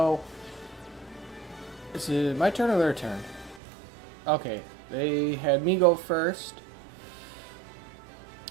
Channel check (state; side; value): drops out; left; at 3.6 s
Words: Is it my turn or their turn? Okay, they had me go first.